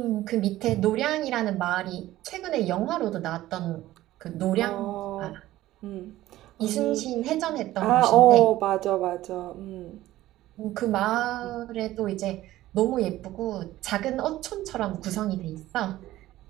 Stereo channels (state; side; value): quieter; left; 15.4 dB